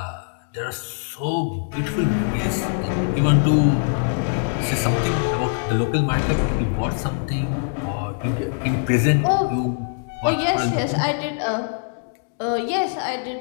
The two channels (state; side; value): silent; right; 64 dB below the other